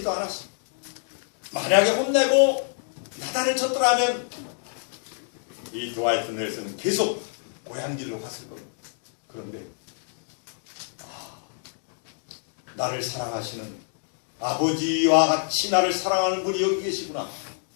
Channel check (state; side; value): silent; right; digital silence